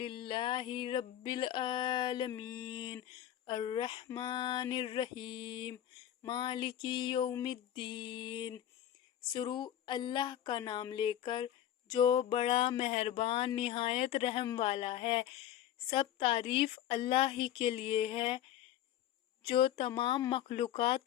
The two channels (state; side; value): quieter; right; 11.4 dB